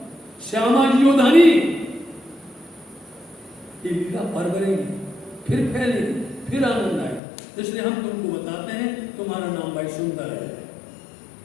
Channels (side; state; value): right; drops out; at 7.2 s